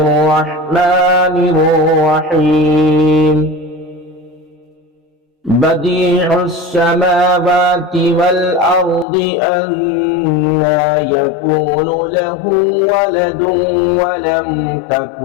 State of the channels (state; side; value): drops out; right; at 9.1 s